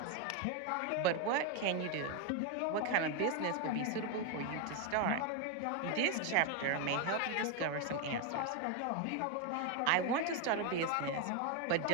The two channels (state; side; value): different; both; correlation 0.01